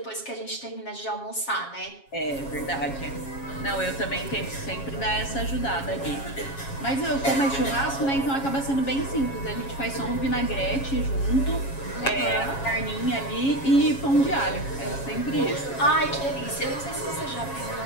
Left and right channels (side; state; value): right; late; 7.3 ms